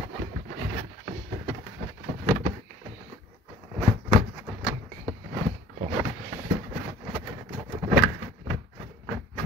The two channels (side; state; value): both; normal; correlation 0.49